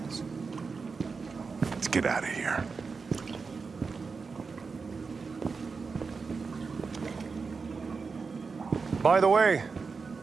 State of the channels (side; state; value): left; quieter; 4.8 dB